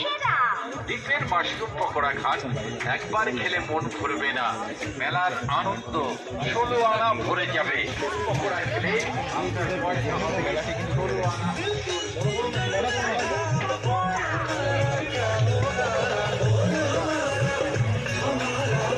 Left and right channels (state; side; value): identical; both; correlation 1.00